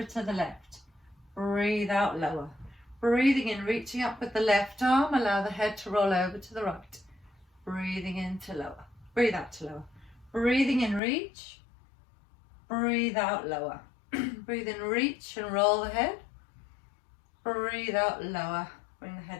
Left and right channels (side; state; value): right; drops out; at 11.0 s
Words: to the left. Breathe out, lower. Breathing in, reaching up with the left arm. Allow the head to roll over to the right. Breathing in to lower. Breathe out to lower. Breathing in, reach. Breathe out, lower. Breathe in, reach and roll the head. Breathe out, lower. Bring the